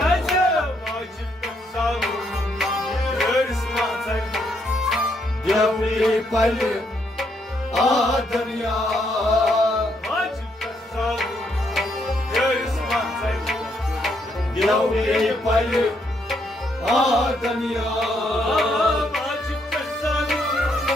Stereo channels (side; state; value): both; normal; correlation 0.74